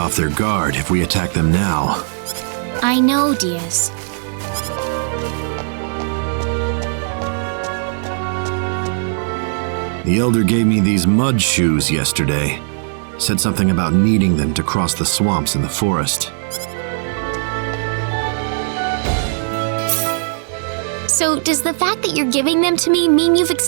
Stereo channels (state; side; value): silent; left; digital silence